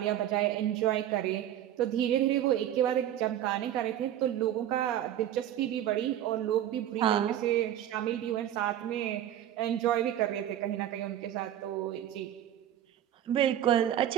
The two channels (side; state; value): left; quieter; 11.6 dB